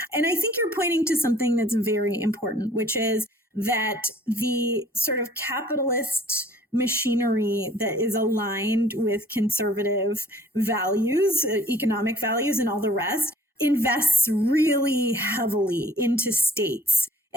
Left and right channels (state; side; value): normal; both; correlation 0.54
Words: And I think you're pointing to something that's very important, which is that the sort of capitalist machinery that is aligned with conservative values, economic values, and all the rest, invests really heavily into states